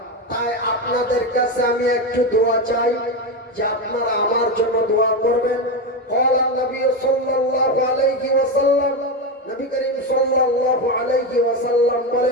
তাই আপনাদের কাছে আমি একটু দোয়া চাই যে আপনারা আমার জন্য দোয়া করবেন। ক্বালা নবী সাল্লাল্লাহু আলাইহি ওয়াসাল্লাম, নবী করিম সাল্লাল্লাহু আলাইহি ওয়াসাল্লাম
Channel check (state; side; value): normal; both; correlation 0.13